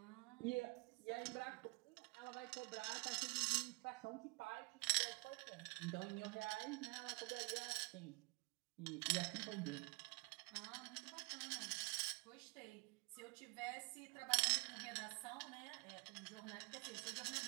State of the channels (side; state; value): left; quieter; 28.6 dB